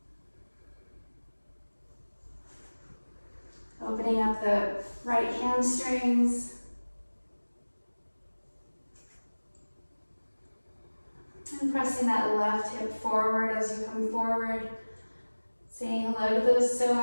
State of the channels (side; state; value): both; inverted; correlation -1.00